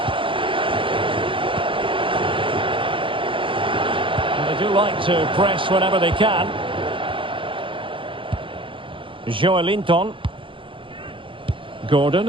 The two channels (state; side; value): late; left; 0.25 ms